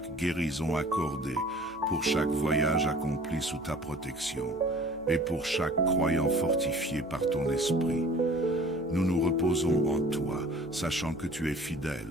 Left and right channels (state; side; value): noise; right; hum, 23 dB below the sound